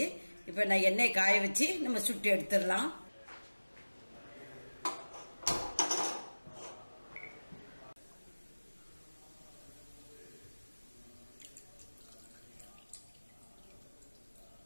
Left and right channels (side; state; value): both; inverted; correlation -1.00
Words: இப்ப நான் எண்ணெய் காய வச்சு நம்ம சுட்டு எடுத்துடலாம்.